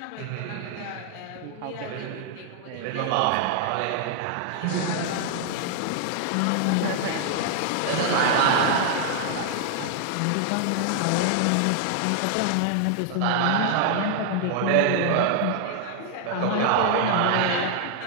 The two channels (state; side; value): different; both; correlation 0.00